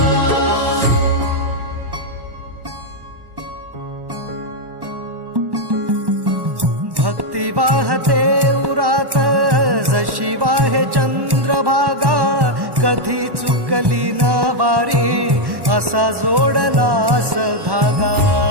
भक्ती वाहते उरात जशी वाहे चंद्रभागा, कधी चुकली ना वारी असा जोडलास धागा।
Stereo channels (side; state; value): left; late; 1.1 ms